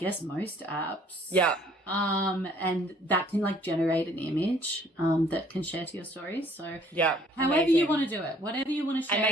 most apps. Yeah. And that can like generate an image that can share to your stories. So however you want to do it, whatever you want to share. And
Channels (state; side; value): normal; both; correlation 0.59